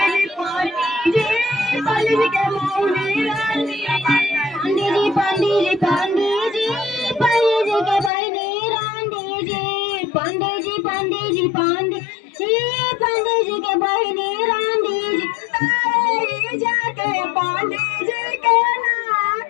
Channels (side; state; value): right; drops out; at 8.1 s